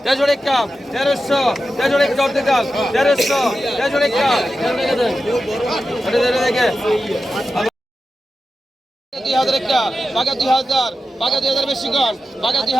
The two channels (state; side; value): normal; both; correlation 0.91